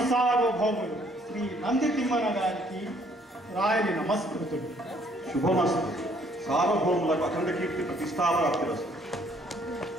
సార్వభౌములు శ్రీ నంది తిమ్మన గారికి రాయలి నమస్కృతుడు. శుభమస్తు. సార్వభౌములకు అఖండ కీర్తి ప్రతిష్టాప్రాప్తిరస్తు.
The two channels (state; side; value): normal; both; correlation 0.63